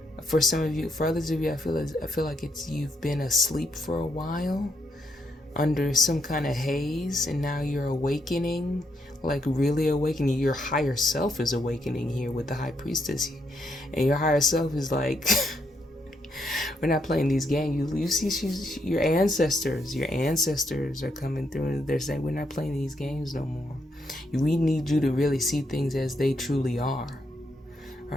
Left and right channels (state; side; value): normal; both; correlation 0.77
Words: for some of you, for others of you, I feel like you've been asleep for a while under some kind of haze, and now you're awakening, like really awakening. Your higher self is awakening here with the High Priestess, and your higher self is like, we're not playing these games. You see, your ancestors are coming through, and they're saying, we're not playing these games no more. We need you to really see things as they truly are.